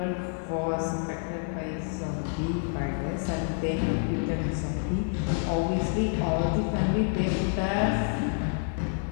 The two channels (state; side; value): silent; right; 59 dB below the other